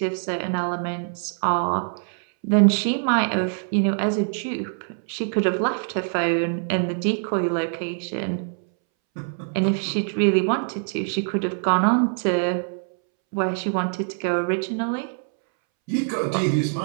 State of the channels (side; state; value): left; silent; 63 dB below the other